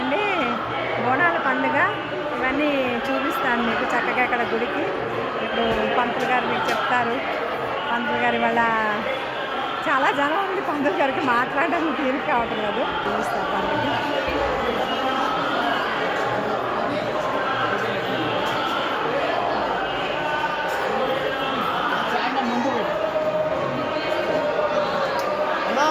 బోనాల పండుగ. ఇవన్నీ చూపిస్తాను మీకు చక్కగా ఇక్కడ గుడికి. ఇప్పుడు పంతులు గారు మీకు చెప్తారు. పంతులు గారు ఇవాళ చాలా జనం ఉంది. పంతులు గారికి మాట్లాడడానికి తీరిక కావటం లేదు. చూపిస్తారు పండుగ.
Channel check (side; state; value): both; identical; correlation 1.00